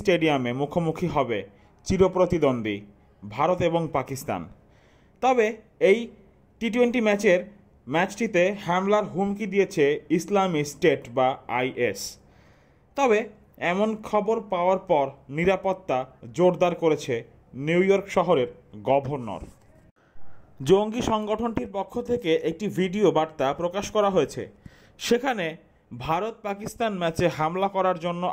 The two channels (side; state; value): both; identical; correlation 1.00